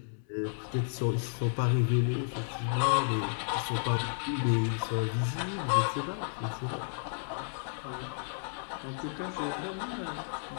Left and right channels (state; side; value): silent; right; 56 dB below the other